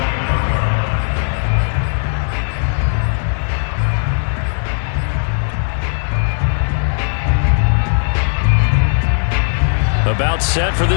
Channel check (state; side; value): silent; right; digital silence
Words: About set for